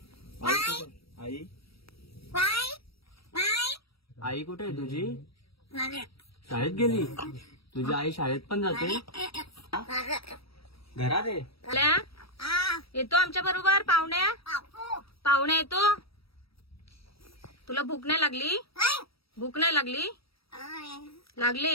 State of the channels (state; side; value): late; right; 0.76 ms